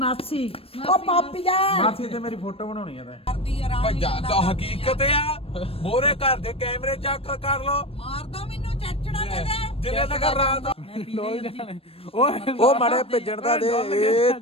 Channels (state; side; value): late; right; 0.28 ms